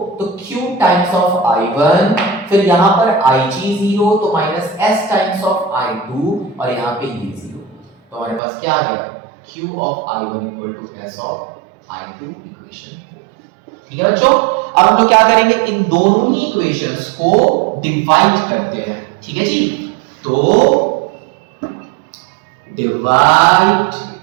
तो Q टाइम्स ऑफ I1, फिर यहां पर Ig जीरो, तो minus S times of I2, और यहां पे ये जीरो, तो हमारे पास क्या आ गया? Q of I1 equal to S of I2, equation 4। ठीक है बच्चों, अब हम लोग क्या करेंगे? इन दोनों ही इक्वेशंस को डिवाइड करते हैं। ठीक है जी, तो डिवाइड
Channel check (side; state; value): left; drops out; at 8.4 s